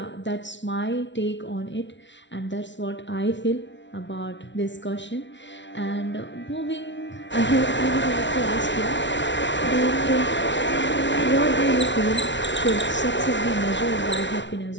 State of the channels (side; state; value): right; late; 0.53 ms